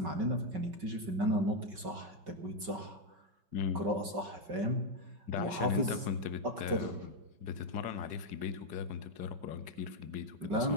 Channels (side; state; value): left; late; 5.2 ms